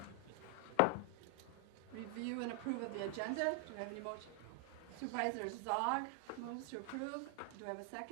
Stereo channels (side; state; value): both; different; correlation 0.00